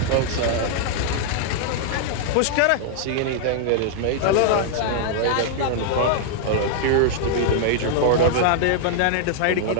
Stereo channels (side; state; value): both; different; correlation -0.01